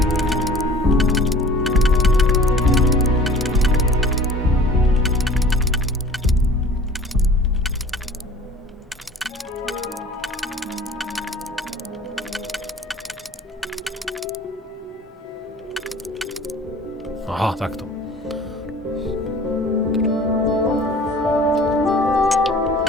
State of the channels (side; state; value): both; normal; correlation 0.46